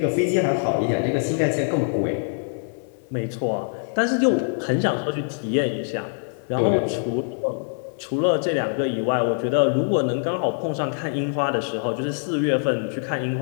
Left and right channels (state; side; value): silent; right; digital silence